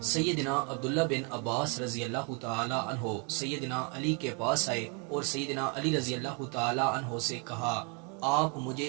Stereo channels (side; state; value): left; quieter; 35.6 dB